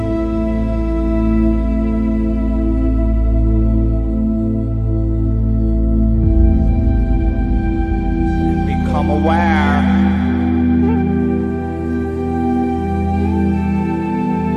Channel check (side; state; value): both; identical; correlation 1.00